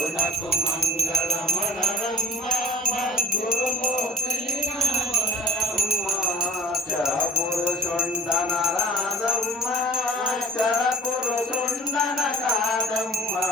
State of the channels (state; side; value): normal; both; correlation 0.47